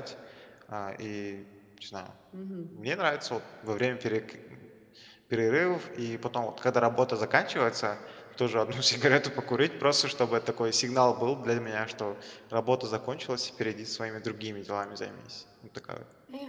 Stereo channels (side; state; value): both; identical; correlation 1.00